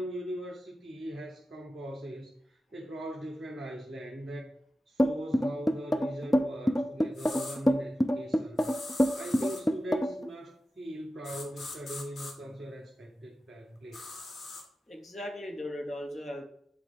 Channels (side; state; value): both; normal; correlation 0.93